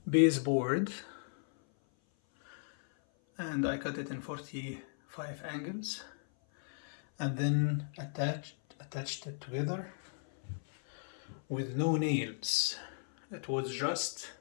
baseboard, and I cut it in 45 angles, and then attached it together with no nails. It was just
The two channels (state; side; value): silent; right; 54 dB below the other